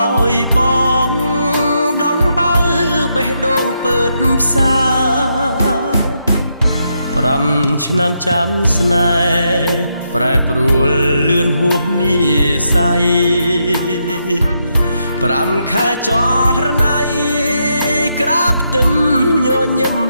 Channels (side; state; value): both; inverted; correlation -0.80